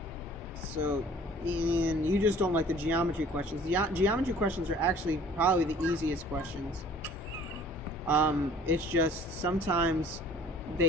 So, Ian, you just don't like the geometry questions. The geometry questions are actually probably the easiest questions. It's just sometimes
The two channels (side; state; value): both; normal; correlation 0.51